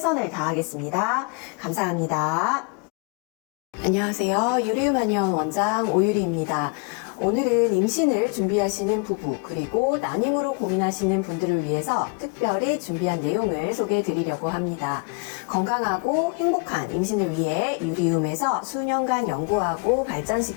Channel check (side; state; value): right; quieter; 33.5 dB